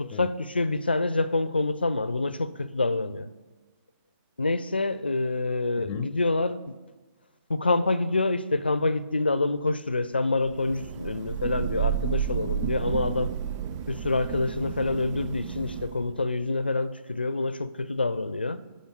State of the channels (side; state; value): both; inverted; correlation -0.79